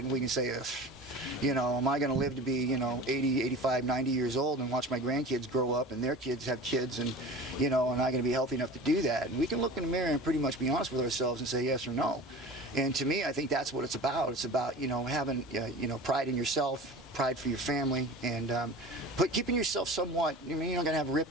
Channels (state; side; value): normal; both; correlation 0.36